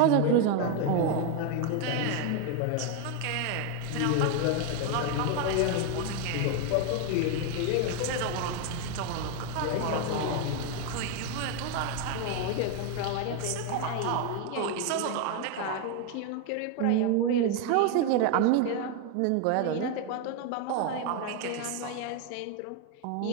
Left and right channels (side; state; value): both; different; correlation 0.01